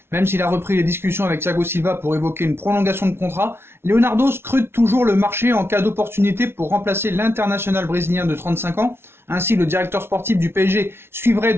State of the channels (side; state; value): left; late; 0.12 ms